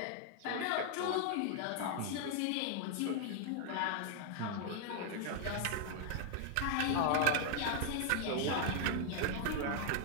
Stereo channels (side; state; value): both; different; correlation 0.00